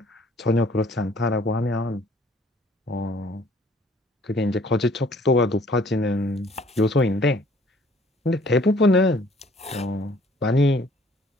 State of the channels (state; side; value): normal; both; correlation 0.58